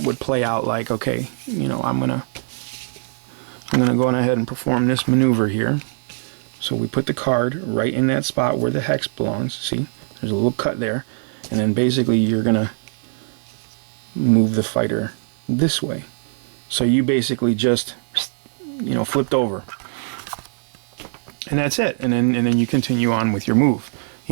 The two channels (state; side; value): silent; left; digital silence